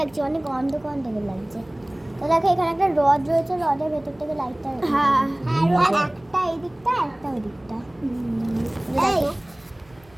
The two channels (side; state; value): right; noise; hum, 29 dB below the sound